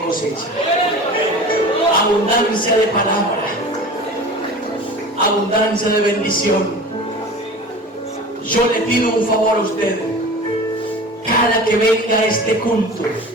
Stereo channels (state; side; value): normal; both; correlation 0.37